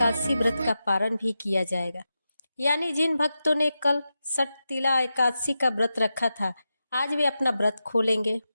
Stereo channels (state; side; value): inverted; both; correlation -0.90